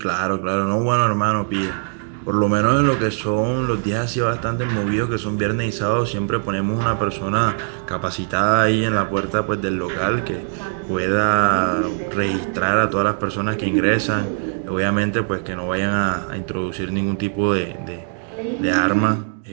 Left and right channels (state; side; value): silent; left; 65 dB below the other